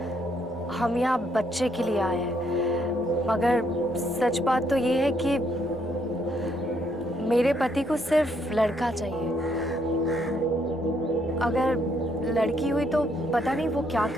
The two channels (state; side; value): normal; both; correlation 0.72